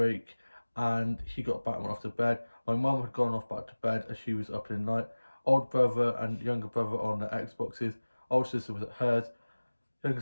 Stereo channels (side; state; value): both; inverted; correlation -1.00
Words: and he got back and went off to bed. My mum had gone off back to bed as she was up in the night. Old brother and younger brother on their Xboxes. Old sister was at hers. Younger